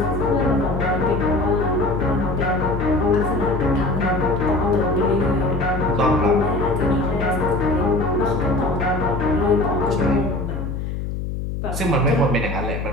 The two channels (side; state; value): left; noise; hum, 4 dB below the sound